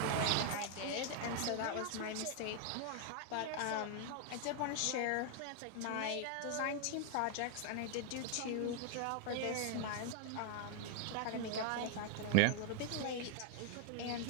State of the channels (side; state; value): both; different; correlation 0.00